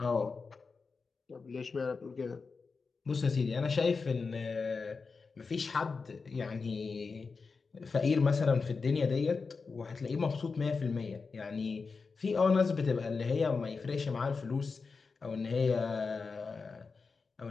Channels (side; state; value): right; quieter; 4.6 dB